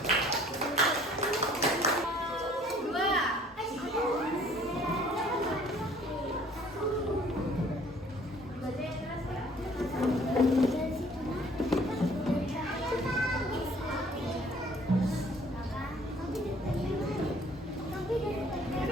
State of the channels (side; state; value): both; normal; correlation 0.56